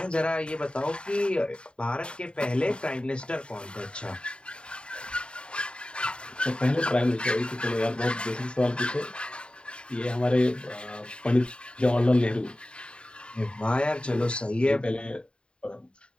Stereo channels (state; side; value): late; right; 0.053 ms